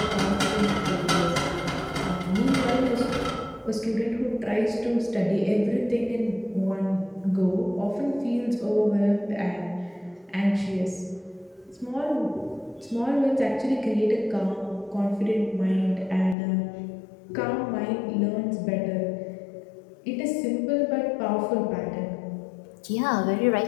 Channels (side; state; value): right; drops out; at 16.4 s